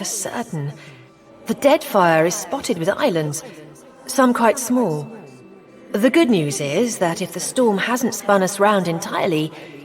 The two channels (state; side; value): identical; both; correlation 1.00